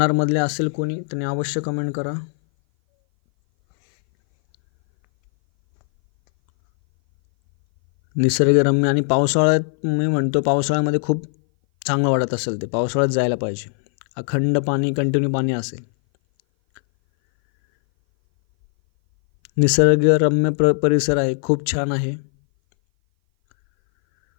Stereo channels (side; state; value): right; silent; 60 dB below the other